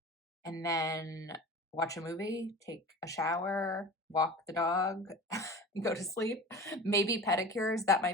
And then watch a movie, take a shower, walk the dog, go to sleep. Maybe pedicures, that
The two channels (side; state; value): both; normal; correlation 0.36